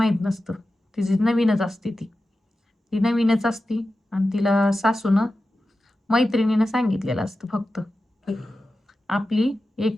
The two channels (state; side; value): normal; both; correlation 0.93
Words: नसतं, तिची नवीनच असते ती ती नवीनच असती. आणि तिला सासूनं मैत्रिणीनं सांगितलेलं असतं फक्त की आपली